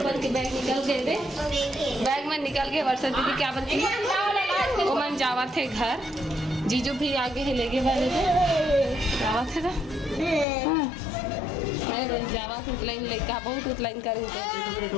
बन के बैग निकल गए थे। बैग में निकल के वर्षा दीदी क्या बनती वो मन जावा थे घर। जीजू भी आगे ही लेके वाले थे जावा थे ना। मैं जावा थे उतलाइन लेके बहुत उतलाइन करें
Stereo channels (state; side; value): drops out; right; at 10.5 s